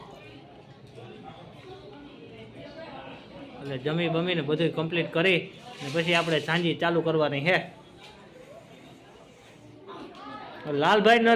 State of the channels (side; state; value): both; identical; correlation 1.00